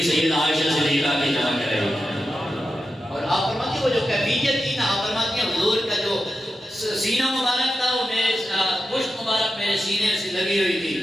سیدہ عائشہ صدیقہ کی چمک رہی ہے۔ اور آپ فرماتی وہ جو کیفیت تھی نا، آپ فرماتی ہیں حضور کا جو سینہ مبارک تھا وہ میرے پشت مبارک میرے سینے سے لگی ہوئی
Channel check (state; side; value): normal; both; correlation 0.90